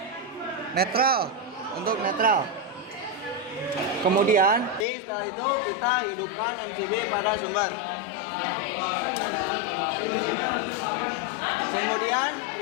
netral, Kemudian setelah itu kita hidupkan MCB pada sumber. Kemudian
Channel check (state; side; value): normal; both; correlation 0.06